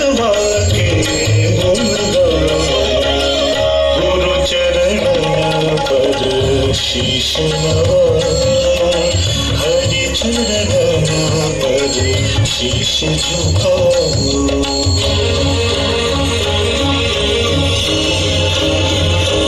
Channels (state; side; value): identical; both; correlation 1.00